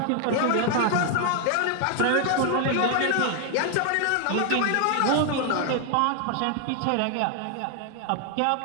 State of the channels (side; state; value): both; different; correlation 0.00